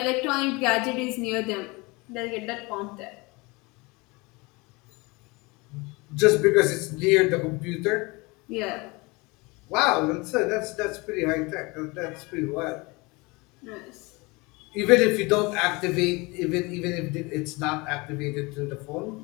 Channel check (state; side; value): quieter; right; 25.5 dB